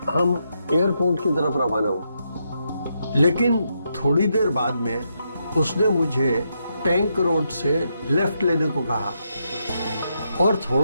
हम एयरपोर्ट की तरफ रवाना हुए, लेकिन थोड़ी देर बाद में उसने मुझे टैंक रोड से लेफ्ट लेने को कहा और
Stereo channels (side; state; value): both; inverted; correlation -0.81